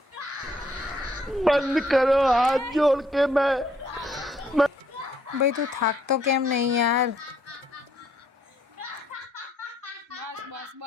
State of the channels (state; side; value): normal; both; correlation 0.68